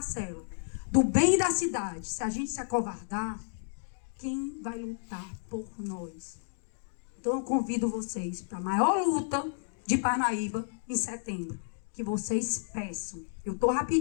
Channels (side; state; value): right; silent; digital silence